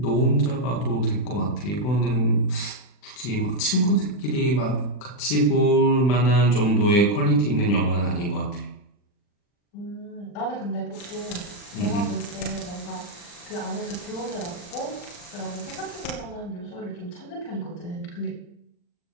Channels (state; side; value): late; right; 40 ms